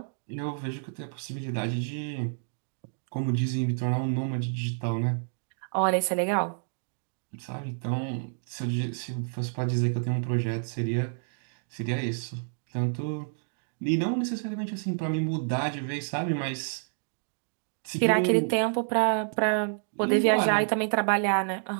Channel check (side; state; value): left; silent; digital silence